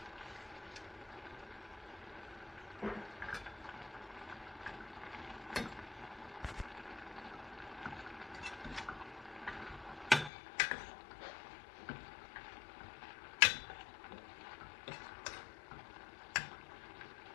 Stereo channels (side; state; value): right; drops out; at 10.3 s